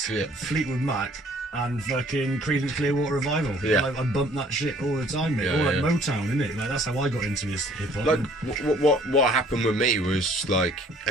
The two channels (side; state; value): both; normal; correlation 0.57